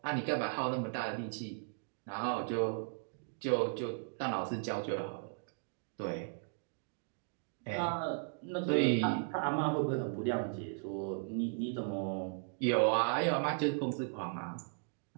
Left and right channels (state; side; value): silent; left; digital silence